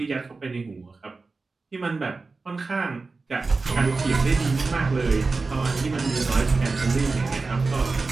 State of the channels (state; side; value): quieter; left; 3.9 dB